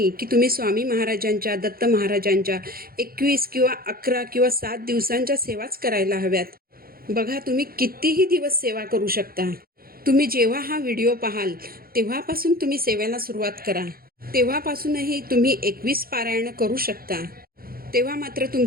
की तुम्ही स्वामी महाराजांच्या दत्त महाराजांच्या 21 किंवा 11 किंवा 7 दिवसांच्या सेवाच करायला हव्यात. बघा, तुम्ही कितीही दिवस सेवा करू शकता. तुम्ही जेव्हा हा व्हिडिओ पाहाल तेव्हापासून तुम्ही सेवेला सुरुवात करा. तेव्हापासूनही तुम्ही 21 पारायणं करू शकता. तेव्हा मात्र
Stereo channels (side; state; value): left; late; 0.43 ms